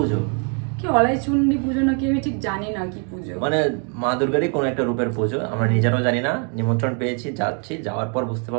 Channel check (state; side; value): quieter; left; 39.5 dB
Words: কি অলাই চুন্ডি পুজো নাকি, আমি ঠিক জানি না কি পুজো। মানে মা দুর্গারই কোনো একটা রূপের পুজো, আমরা নিজেরাও জানি না। নিমন্ত্রণ পেয়েছি, যাচ্ছি, যাওয়ার পর বুঝতে